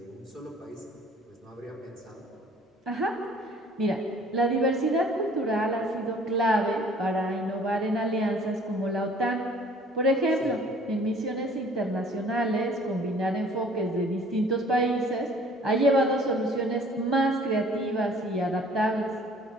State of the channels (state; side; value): normal; both; correlation 0.53